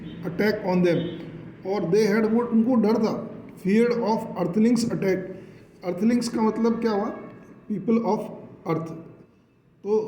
attack on them, और they had, वो उनको डर था, feared of earthlings attack. Earthlings का मतलब क्या हुआ? People of earth. तो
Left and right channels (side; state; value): both; identical; correlation 1.00